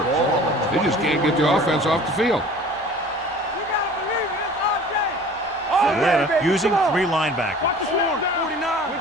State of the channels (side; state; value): both; normal; correlation 0.45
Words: They just can't get the offense off the field. Atlanta using 3 linebackers.